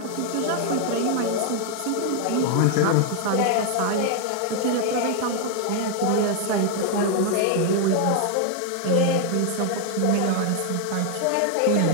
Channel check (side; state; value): both; different; correlation 0.00